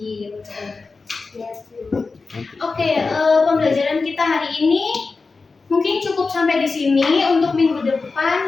Oke, pembelajaran kita hari ini mungkin cukup sampai di sini. Untuk minggu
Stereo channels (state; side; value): quieter; right; 4.2 dB